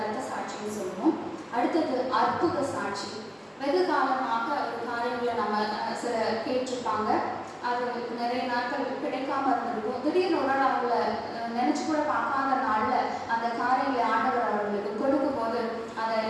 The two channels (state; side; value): identical; both; correlation 1.00